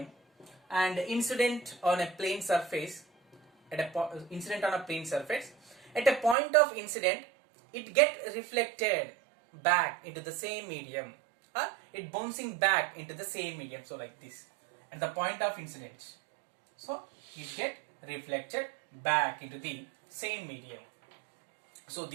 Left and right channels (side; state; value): left; drops out; at 6.4 s